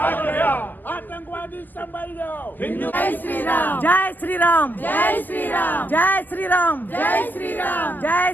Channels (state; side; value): late; right; 0.086 ms